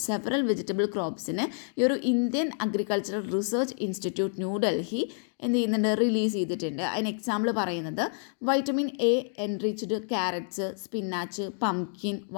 several vegetable ക്രോപ്സിന് ഈ ഒരു Indian Agricultural Research Institute New Delhi എന്ത് ചെയ്യുന്നുണ്ട്, release ചെയ്തിട്ടുണ്ട്. അതിന് example പറയുന്നത് vitamin A enriched carrots, spinach, pumpkin,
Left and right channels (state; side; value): silent; right; 59 dB below the other